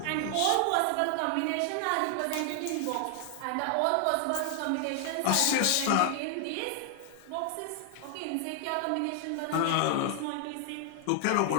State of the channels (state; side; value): different; both; correlation 0.00